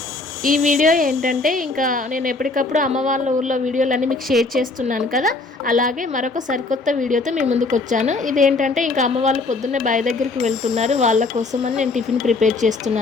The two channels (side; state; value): right; quieter; 3.5 dB